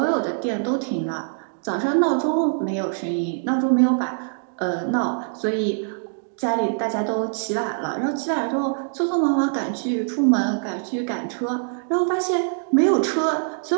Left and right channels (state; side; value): silent; left; digital silence